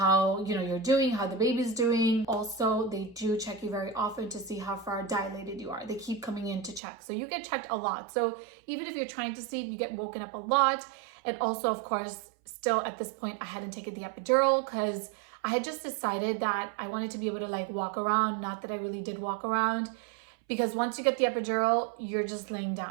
you know, you're doing, how the baby's doing. Also, they do check you very often to see how far dilated you are. They keep coming in to check. So you get checked a lot. So even if you're trying to sleep, you get woken up a lot. And also, of course, still at this point, I hadn't taken the epidural because I had just decided that I wanted to be able to like walk around. Not that I really did walk around, because once you get the epidural, you're just laying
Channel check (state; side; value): drops out; left; at 6.8 s